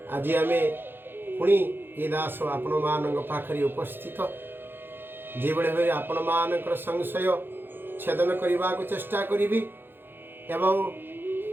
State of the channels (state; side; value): late; left; 0.10 ms